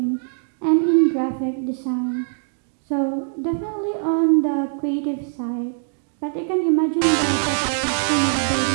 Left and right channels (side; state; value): left; silent; digital silence